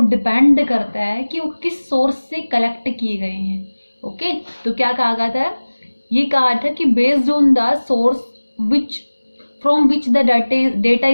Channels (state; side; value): inverted; both; correlation -1.00